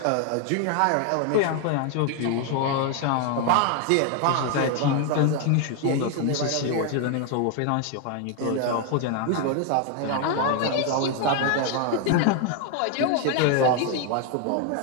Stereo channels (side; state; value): both; different; correlation 0.01